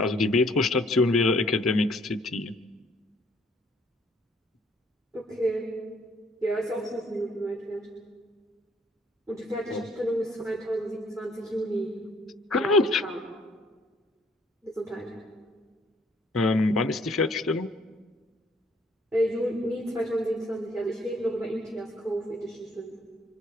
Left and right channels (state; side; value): normal; both; correlation 0.63